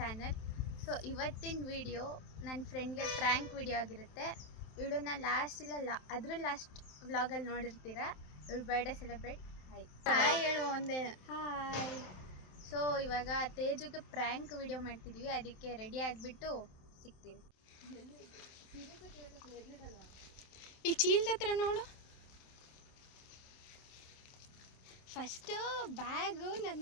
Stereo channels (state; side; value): late; right; 27 ms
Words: So ಇವತ್ತಿನ video ನನ್ನ ಫ್ರೆಂಡ್ಗೆ prank video ಆಗಿರುತ್ತೆ. ಇವಳನ್ನ ಲಾಸ್ಟ್ ವ್ಲಾಗಲ್ಲಿ ನೋಡಿರ್ತೀರಾ. ಇವಳು ಬರ್ಡೇ ಸೆಲೆಬ್ರೇಟ್. ಹಾಯ್ ಹೇಳು ಒಂದೇ ಹಾಯ್. ಸೊ ಇವಾಗ ತೇಜುಗೆ ಪ್ರ್ಯಾಂಕ್ ವಿಡಿಯೋ ಮಾಡ್ತಿದ್ವಿ, ಅದಕ್ಕೆ ರೆಡಿ ಆಗಿಬಿಟ್ಟು ಸಿಗ್ತೀವಿ. ಈ ಚೀಲದ ಹತ್ರ ನೋಡು. ಫಸ್ಟು ಬ್ಯಾಗು